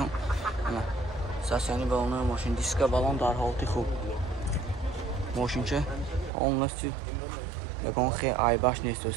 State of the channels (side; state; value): left; drops out; at 6.3 s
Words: نه. ساسیانی بالون ماشین دیسک بالون در حالتی خوب. ماشین چه اون نستی یکان خیلی عیبش نیست